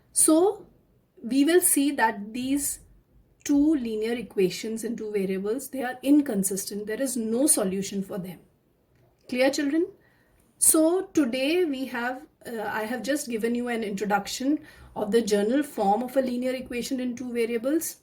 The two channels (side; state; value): both; identical; correlation 1.00